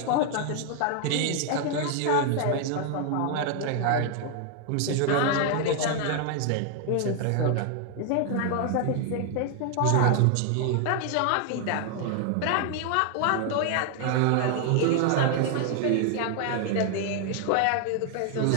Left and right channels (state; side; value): different; both; correlation 0.00